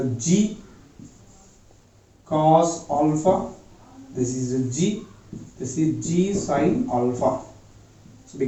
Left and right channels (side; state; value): both; identical; correlation 1.00